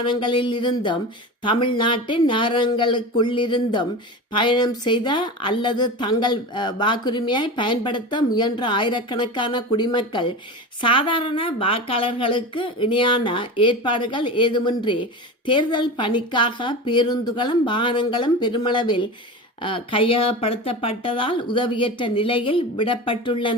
இருந்தும் தமிழ்நாட்டின் நகரங்களுக்குள்ளிருந்தும் பயணம் செய்த அல்லது தங்கள் வாக்குரிமையை பயன்படுத்த முயன்ற ஆயிரக்கணக்கான குடிமக்கள் சாதாரண வாக்காளர்களுக்கு இணையான ஏற்பாடுகள் ஏதுமின்றி தேர்தல் பணிக்காக பேருந்துகளும் வாகனங்களும் பெருமளவில் கையகப்படுத்தப்பட்டதால் உதவியற்ற நிலையில்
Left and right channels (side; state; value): both; normal; correlation 0.28